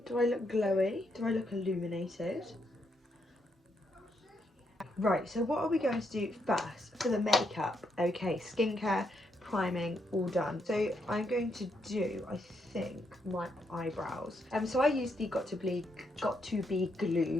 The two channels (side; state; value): both; normal; correlation 0.78